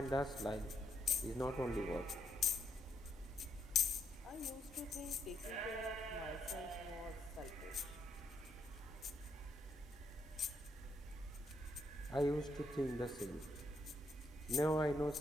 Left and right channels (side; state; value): both; normal; correlation 0.77